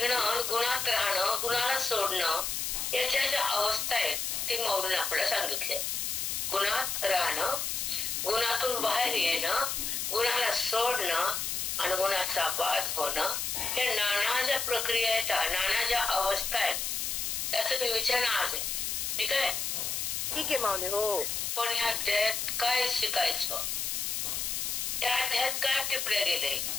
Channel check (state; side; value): noise; left; hiss, 1 dB below the sound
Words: गुणात राहणं, गुणाला सोडणं याच्या ज्या अवस्था आहेत ते मौलीने आपल्याला सांगितले. गुणात राहणं, गुणातून बाहेर येणं, गुणाला सोडणं आणि गुणाचा बाध होणं, हे नाना ज्या प्रक्रिया आहेत, नाना ज्या अवस्था आहेत त्याचं विवेचन आज आहे. ठीक आहे, ठीक आहे माऊली. हो, पण ह्या अध्यायात काय शिकायचं, त्या अध्यायात काय टिपल्या गेले.